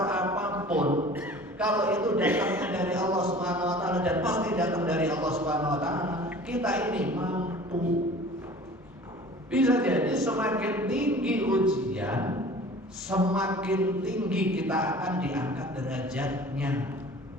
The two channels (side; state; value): both; normal; correlation 0.44